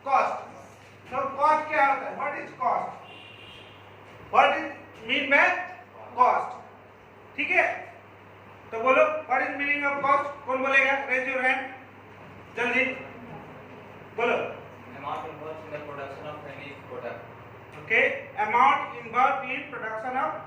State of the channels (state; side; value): identical; both; correlation 1.00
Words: cost. तो कॉस्ट क्या होता है? What is cost? What is mean by cost? ठीक है, तो बोलो what is meaning of cost? कौन बोलेगा? रेज योर हैंड, जल्दी बोलो। Amount involved in the production of any product. Okay, amount involved in production of